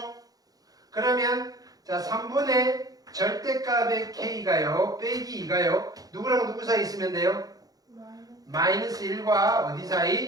그러면 자 3분의 절대값의 K가요. 빼기 2가요. 누구랑 누구 사이 있으면 돼요? 마이너스 1과 어디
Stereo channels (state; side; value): late; left; 0.18 ms